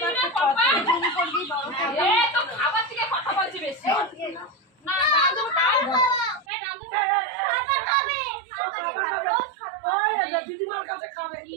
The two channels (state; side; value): drops out; left; at 6.5 s